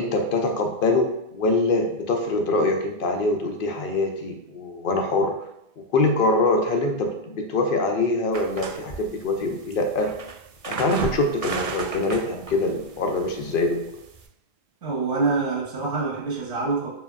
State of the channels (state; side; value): late; right; 1.6 ms